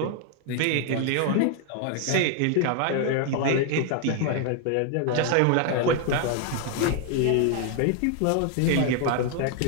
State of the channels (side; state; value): both; different; correlation 0.00